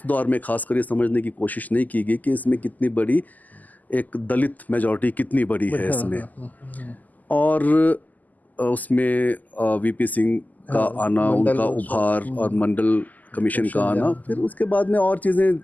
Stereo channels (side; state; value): right; late; 0.081 ms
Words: दौर में खासकर ये समझने की कोशिश नहीं की गई कि इसमें कितनी बड़ी एक दलित मेजॉरिटी कितनी बड़ी है इसमें। और उसमें वीपी सिंह का आना, उनका उभार, और मंडल कमीशन का आना, फिर उसके बाद में और चीज़ें,